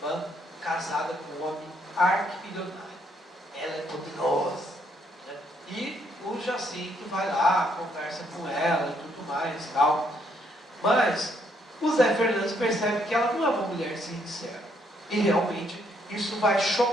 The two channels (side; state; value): both; normal; correlation 0.72